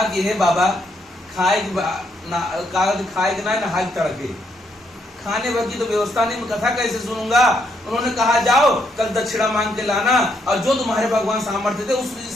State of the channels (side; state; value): both; normal; correlation 0.75